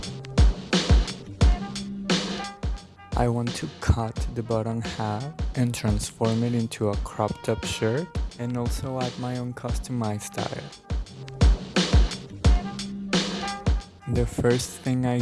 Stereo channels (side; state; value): both; identical; correlation 1.00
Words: I want to cut the bottom half and transform it into a cropped up shirt and also add my own customized style. The first thing I